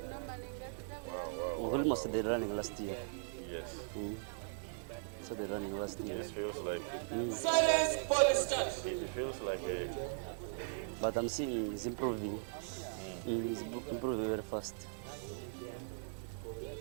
Wow. Okolimo started running last year. Yes. Started running last year. This feels like Silence for the start. it feels like a But I'm seeing he's improving. He's improving very fast.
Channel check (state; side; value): silent; left; digital silence